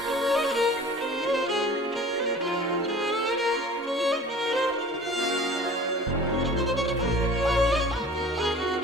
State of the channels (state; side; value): normal; both; correlation 0.45